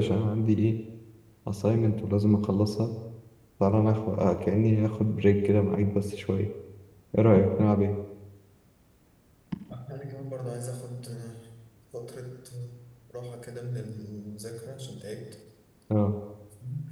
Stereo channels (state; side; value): identical; both; correlation 1.00